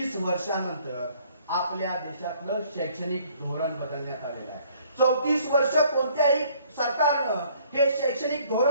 वर्षानंतर आपल्या देशातलं शैक्षणिक धोरण बदलण्यात आलेलं आहे. 34 वर्ष कोणत्याही सरकारनं हे शैक्षणिक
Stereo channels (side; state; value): both; inverted; correlation -0.60